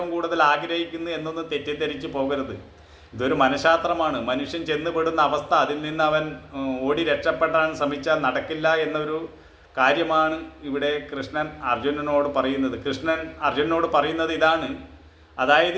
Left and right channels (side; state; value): both; identical; correlation 1.00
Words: കൂടുതൽ ആഗ്രഹിക്കുന്നത് എന്നൊന്നും തെറ്റിദ്ധരിച്ച് പോകരുത്. ഇതൊരു മനഃശാസ്ത്രമാണ്. മനുഷ്യൻ ചെന്നുപെടുന്ന അവസ്ഥ, അതിൽ നിന്ന് അവൻ ഓടി രക്ഷപ്പെടാൻ ശ്രമിച്ചാൽ നടക്കില്ല എന്നൊരു കാര്യമാണ് ഇവിടെ കൃഷ്ണൻ അർജുനനോട് പറയുന്നത്. കൃഷ്ണൻ അർജുനനോട് പറയുന്നത് ഇതാണ്.